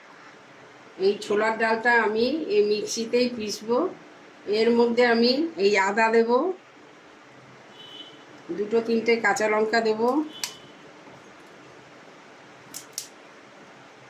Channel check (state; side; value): identical; both; correlation 1.00